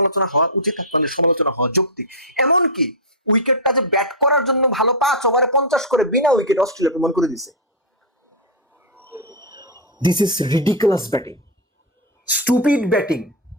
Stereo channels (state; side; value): normal; both; correlation -0.03